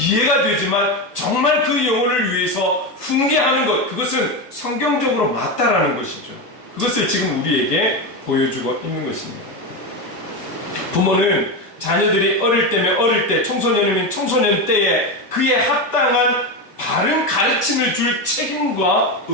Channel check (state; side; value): late; right; 1.4 ms